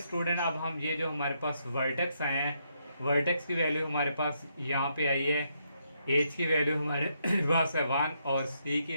अब हम ये जो हमारे पास वर्टेक्स आए हैं, वर्टेक्स की वैल्यू हमारे पास यहाँ पे आई है, h की वैल्यू हमारे पास है 1 और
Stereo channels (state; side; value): inverted; both; correlation -0.77